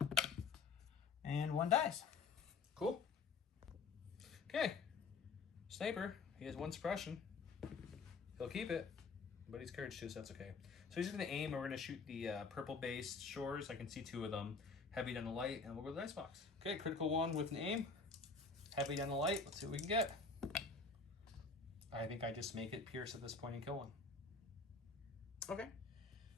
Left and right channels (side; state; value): right; quieter; 4.6 dB